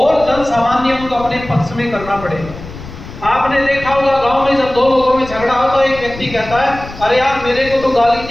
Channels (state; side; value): noise; left; rumble, 14 dB below the sound